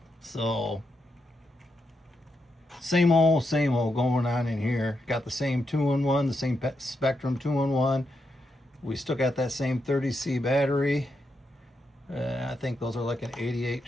so same old going on in here. Got the same 2-in-1, the same Spectrum 2-in-1. We still got that same 30C battery. I think those are like an 88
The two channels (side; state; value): both; normal; correlation 0.83